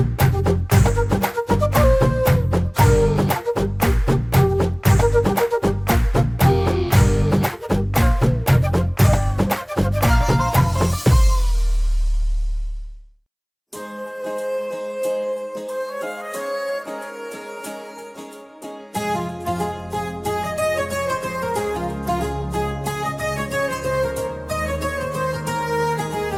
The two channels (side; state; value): both; identical; correlation 1.00